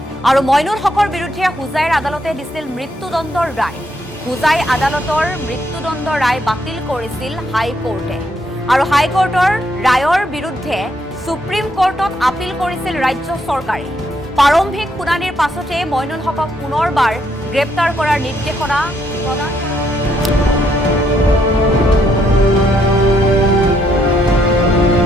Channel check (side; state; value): both; normal; correlation 0.73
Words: আৰু মইনুল হকৰ বিৰুদ্ধে হুজাইৰ আদালতে দিছিল মৃত্যুদণ্ডৰ ৰায়। হুজাই আদালতৰ মৃত্যুদণ্ড ৰায় বাতিল কৰিছিল হাইকোৰ্টে। আৰু হাইকোৰ্টৰ ৰায়ৰ বিৰুদ্ধে সুপ্ৰিম কোৰ্টত আপিল কৰিছিল ৰাজ্য চৰকাৰে। প্ৰাৰম্ভিক শুনানিৰ পাছতে মইনুল হকক পুনৰবাৰ গ্ৰেপ্তাৰ কৰাৰ নিৰ্দেশনা প্ৰদান